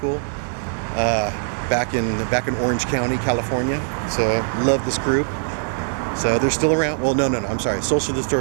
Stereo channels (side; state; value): left; silent; digital silence